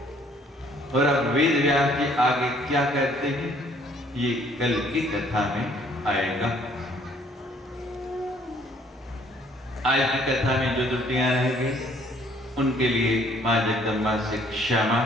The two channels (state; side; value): normal; both; correlation 0.61